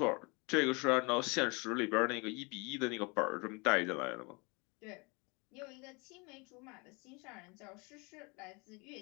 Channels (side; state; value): right; quieter; 29.3 dB